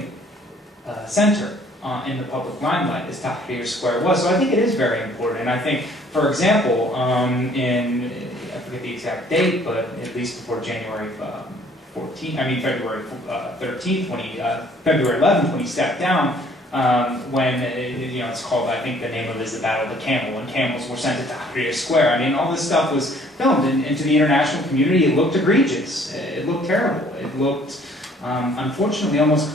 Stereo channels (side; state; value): both; normal; correlation 0.59